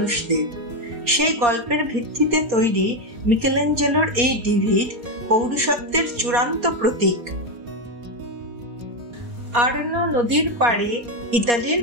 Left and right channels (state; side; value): late; left; 4.2 ms